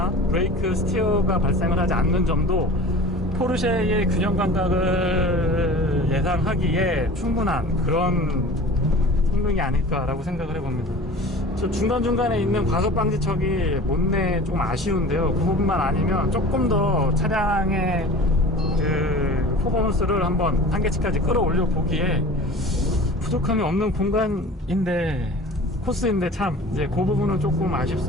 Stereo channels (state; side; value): normal; both; correlation 0.40